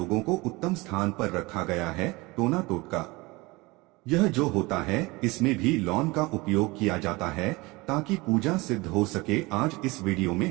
को उत्तम स्थान पर रखा गया है। टोना टोटका यह जो होता है इसमें भी लौंग का उपयोग किया जाता है ताकि पूजा सिद्ध हो सके। आज इस वीडियो में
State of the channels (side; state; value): left; quieter; 23.1 dB